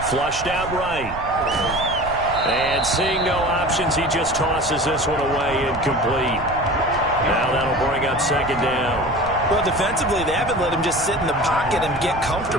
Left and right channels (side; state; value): right; noise; rumble, 13 dB below the sound